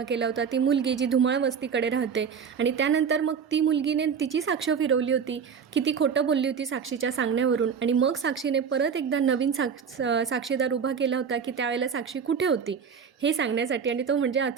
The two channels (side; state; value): left; quieter; 6.7 dB